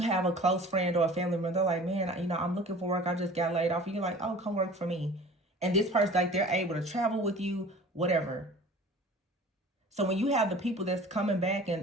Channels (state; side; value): normal; both; correlation 0.44